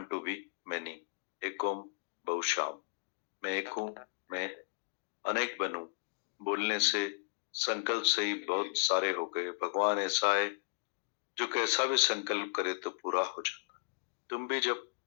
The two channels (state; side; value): quieter; right; 38.9 dB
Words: to be many, एक ओम बहुश्याम। मैं एक हूँ, मैं अनेक बनूं। बोलने से संकल्प से ही बहुत सारे हो गए। भगवान ऐसा है जो कैसा भी संकल्प करे तो पूरा हो जाता। तुम भी जब